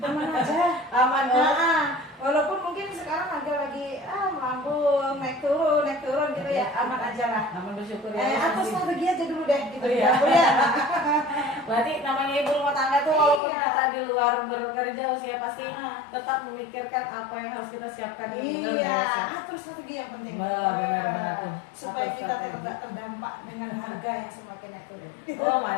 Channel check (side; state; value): right; drops out; at 13.4 s